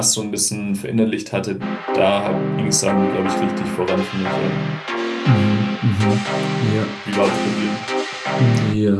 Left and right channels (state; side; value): identical; both; correlation 1.00